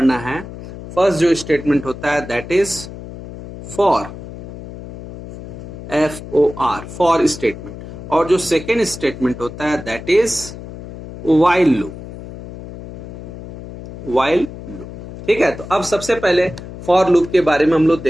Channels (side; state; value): left; noise; hum, 12 dB below the sound